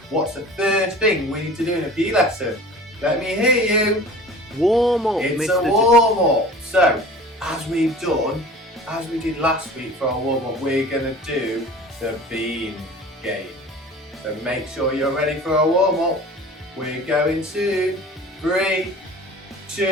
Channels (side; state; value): both; normal; correlation 0.42